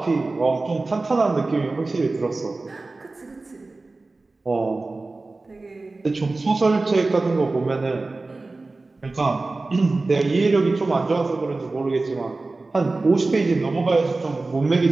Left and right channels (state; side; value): quieter; left; 3.4 dB